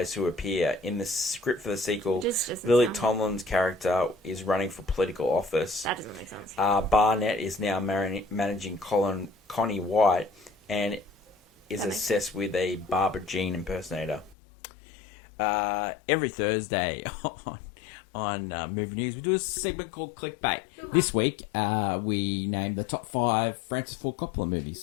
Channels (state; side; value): drops out; right; at 14.4 s